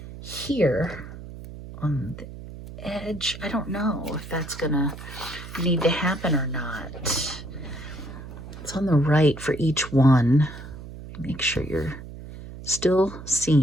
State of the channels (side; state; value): right; noise; hum, 13 dB below the sound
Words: here on the edge. I don't know if that's gonna need to happen or not. It's on the right for each one. Make sure you're still